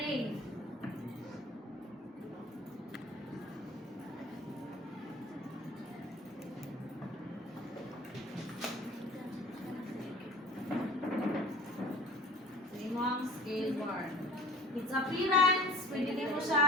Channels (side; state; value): both; normal; correlation 0.44